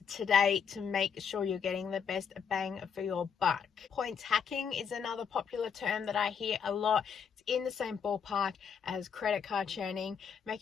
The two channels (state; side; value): quieter; right; 6.9 dB